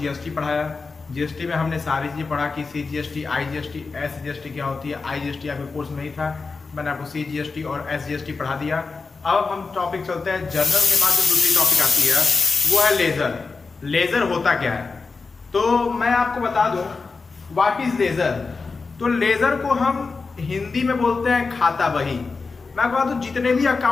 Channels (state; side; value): quieter; right; 4.3 dB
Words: पढ़ाया। जीएसटी में हमने सारी चीज़ें पढ़ा कि CGST, IGST, SGST क्या होती है। IGST आपके कोर्स में ही था, मैंने आपको CGST और SGST पढ़ा दिया। अब हम टॉपिक चलते हैं जर्नल के बाद जो दूसरी टॉपिक आती है वो है लेजर। लेजर होता क्या है, तो मैं आपको बता दूं व्हाट इज लेजर। तो लेजर को हम हिंदी में बोलते हैं खाता बही। मैं बता दूं जितने भी